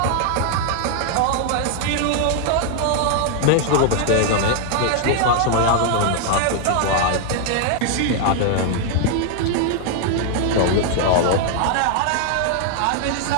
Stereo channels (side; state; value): both; different; correlation 0.00